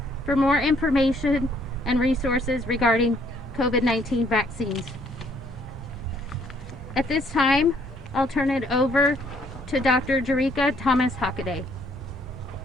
for more information and resources regarding COVID-19 vaccines. At this time, I'll turn it over to Dr. Jerika Thomas Hockaday.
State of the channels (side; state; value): both; normal; correlation 0.65